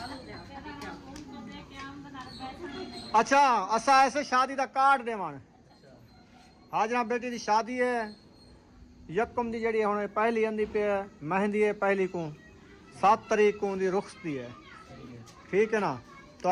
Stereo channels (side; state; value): both; identical; correlation 1.00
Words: अच्छा असा ऐसे शादी का कार्ड देवान हाजरा बेटी की शादी है यकम दी जड़ी हुन पहली आंदी पे मेहंदी है पहली को 7 तारीख को दी रुखसती है ठीक है ना तो